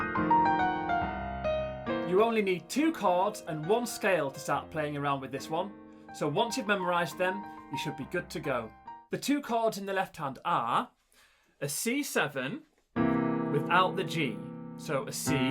You only need 2 chords and 1 scale to start playing around with this one, so once you've memorised them, you should be good to go. The 2 chords in the left hand are a C7 without the G, so a C, E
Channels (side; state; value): both; identical; correlation 1.00